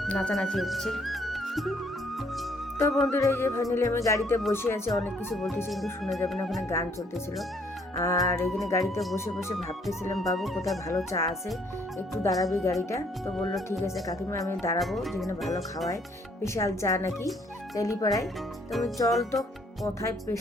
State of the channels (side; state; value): both; normal; correlation 0.66